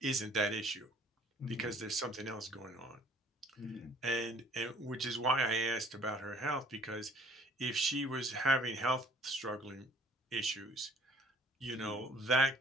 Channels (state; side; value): normal; both; correlation 0.56